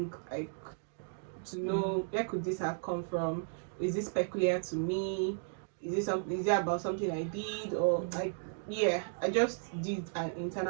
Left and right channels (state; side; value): silent; left; digital silence